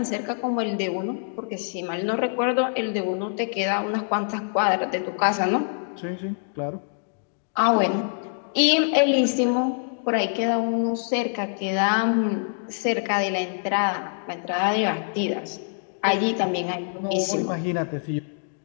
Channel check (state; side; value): silent; right; digital silence